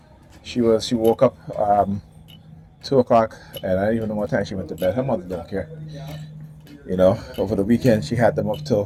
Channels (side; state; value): both; identical; correlation 1.00